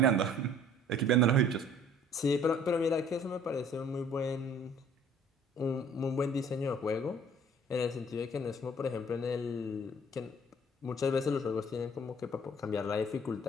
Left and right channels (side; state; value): both; normal; correlation 0.53